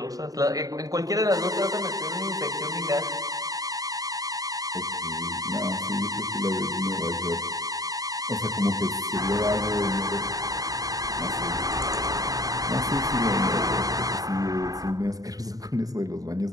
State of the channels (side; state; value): left; late; 0.18 ms